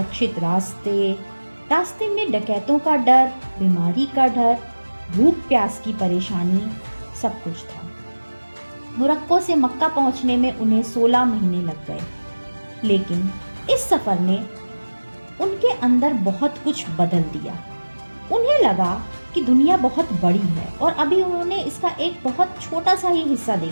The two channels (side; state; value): both; inverted; correlation -1.00